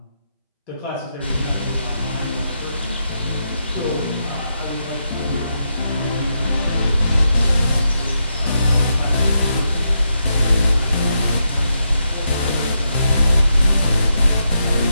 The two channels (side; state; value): both; inverted; correlation -0.82